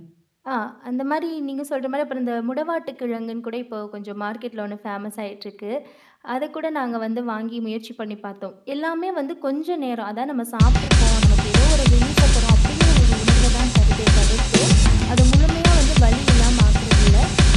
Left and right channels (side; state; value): both; identical; correlation 1.00